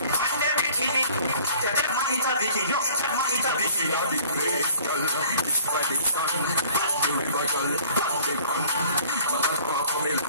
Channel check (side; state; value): both; inverted; correlation -0.52